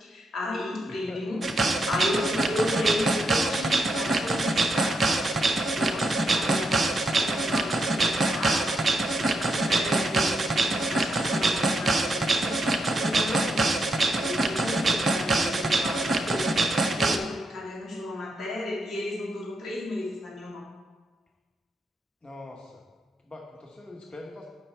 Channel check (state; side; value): normal; both; correlation 0.81